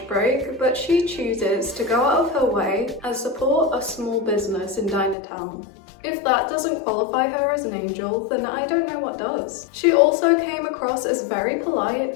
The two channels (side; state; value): right; drops out; at 5.2 s